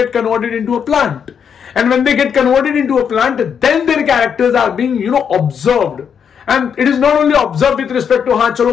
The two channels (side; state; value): right; quieter; 7.4 dB